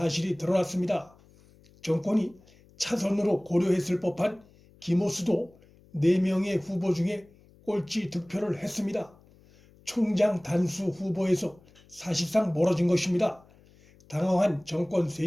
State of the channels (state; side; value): noise; left; hum, 28 dB below the sound